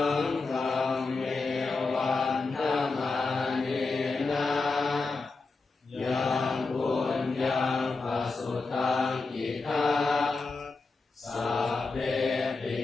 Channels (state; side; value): quieter; right; 3.9 dB